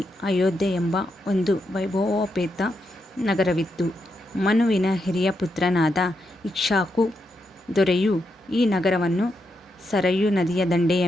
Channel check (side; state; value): both; normal; correlation 0.83